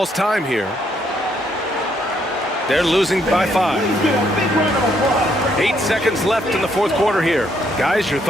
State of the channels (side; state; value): both; normal; correlation 0.72